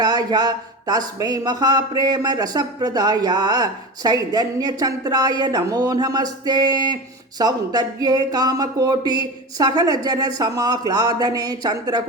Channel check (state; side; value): normal; both; correlation 0.27